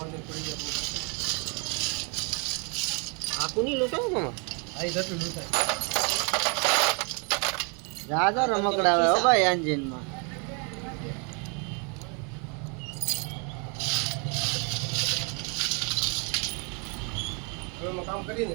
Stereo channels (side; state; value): left; quieter; 35.6 dB